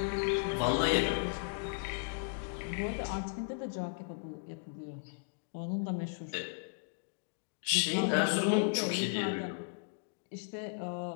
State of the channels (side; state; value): right; silent; digital silence